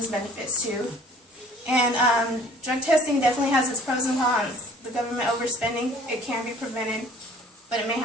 benefits too. And drug testing definitely has its pros and cons. The government overspending, it can be prevented, but it may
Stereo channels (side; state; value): both; normal; correlation 0.52